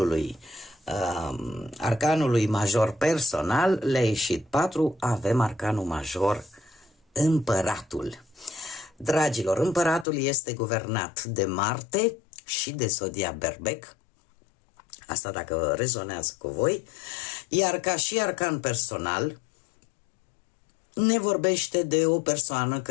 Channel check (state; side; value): drops out; right; at 10.1 s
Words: arcanului major personal, le-a ieșit 4, avem arcanul major împăratul. Dragilor, împăratul este guvernat de Marte și de zodia Berbec, asta dacă rezonează cu voi, iar ca și arcan personal ne vorbește de o persoană